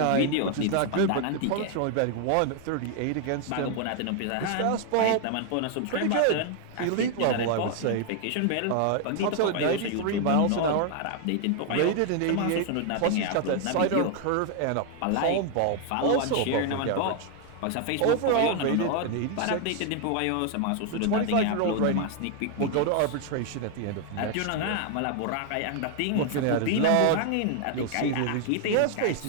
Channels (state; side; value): different; both; correlation 0.00